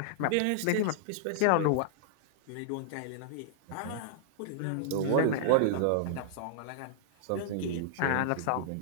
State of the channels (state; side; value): different; both; correlation -0.01